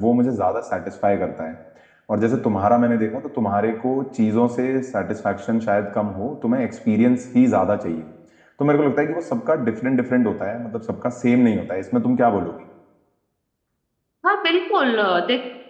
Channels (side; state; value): both; identical; correlation 1.00